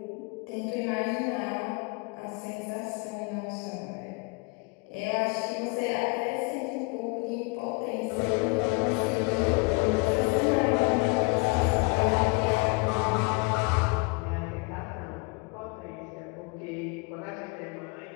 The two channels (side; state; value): right; quieter; 29.9 dB